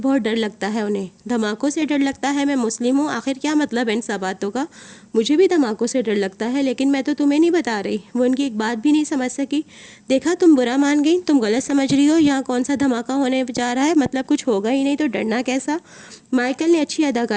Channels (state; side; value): identical; both; correlation 1.00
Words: ڈر لگتا ہے انہیں۔ دھماکوں سے ڈر لگتا ہے؟ میں مسلم ہوں، آخر کیا مطلب ہے ان سب باتوں کا؟ مجھے بھی دھماکوں سے ڈر لگتا ہے، لیکن میں تو تمہیں نہیں بتا رہی۔ وہ ان کی ایک بات بھی نہیں سمجھ سکی۔ دیکھا، تم برا مان گئی، تم غلط سمجھ رہی ہو، یہاں کون سا دھماکہ ہونے جا رہا ہے، مطلب کچھ ہوگا ہی نہیں تو ڈرنا کیسا؟ مائیکل نے اچھی